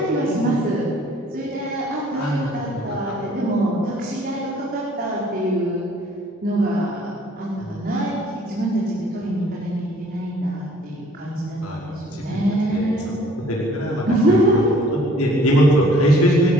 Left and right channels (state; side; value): normal; both; correlation 0.56